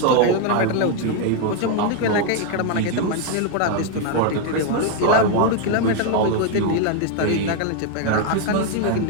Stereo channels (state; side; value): different; both; correlation 0.01